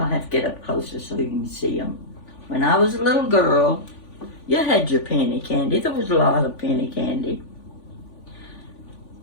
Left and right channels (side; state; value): right; late; 3.5 ms